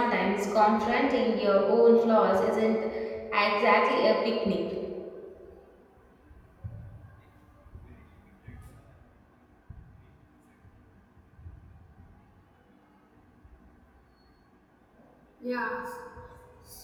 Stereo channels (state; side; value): identical; both; correlation 1.00